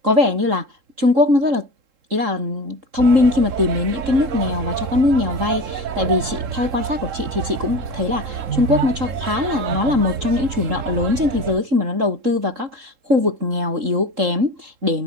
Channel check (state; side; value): late; left; 3.7 ms